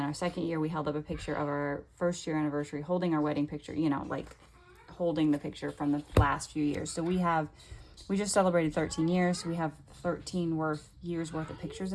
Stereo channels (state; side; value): identical; both; correlation 1.00